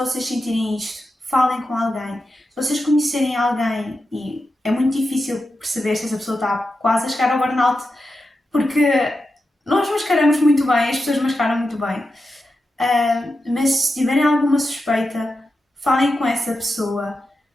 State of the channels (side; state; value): both; normal; correlation 0.89